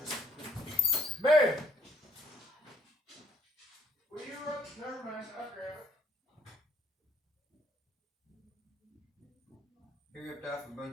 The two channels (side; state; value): both; normal; correlation 0.67